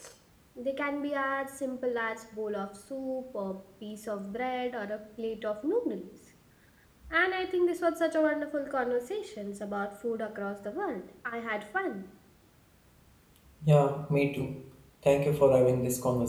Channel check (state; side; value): identical; both; correlation 1.00